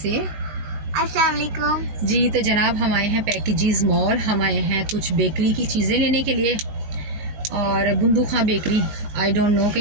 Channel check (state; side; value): late; left; 19 ms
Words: अस्सलाम वालेकुम। जी तो जनाब हम आए हैं पैकेजेस मॉल। हम आए हैं कुछ बेकरी की चीज़ें लेने के लिए। और बुंदूखा बेकरी, आई डोंट नो कि